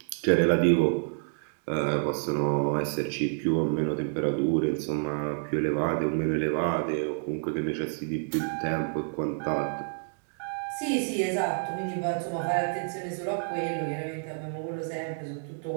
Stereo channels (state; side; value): silent; left; digital silence